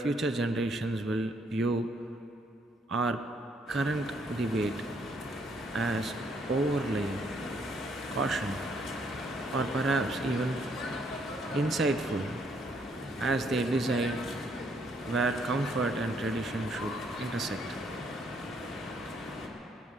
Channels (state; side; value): normal; both; correlation 0.69